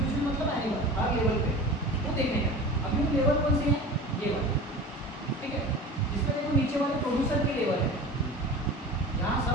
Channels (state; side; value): normal; both; correlation 0.35